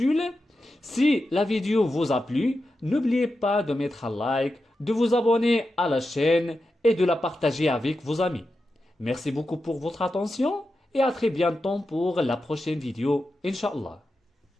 Si la vidéo vous a plu, n'oubliez pas de mettre un like, de vous abonner à la chaîne et de la partager avec vos amis. Merci beaucoup pour votre attention et à très bientôt pour la prochaine vidéo, Inch'Allah.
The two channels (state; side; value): normal; both; correlation 0.90